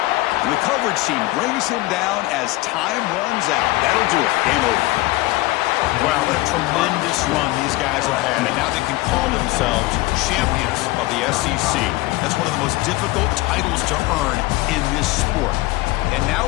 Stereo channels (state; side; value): quieter; right; 19.8 dB